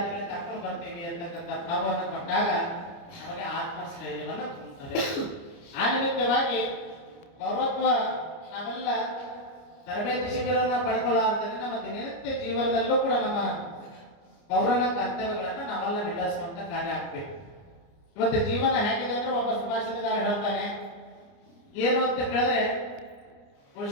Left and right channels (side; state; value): right; late; 29 ms